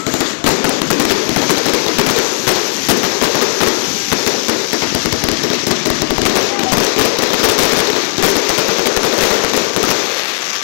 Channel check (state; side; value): silent; right; 71 dB below the other